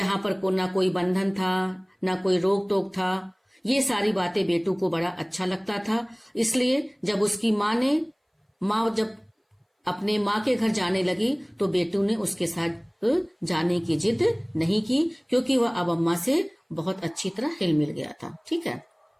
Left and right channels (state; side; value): identical; both; correlation 1.00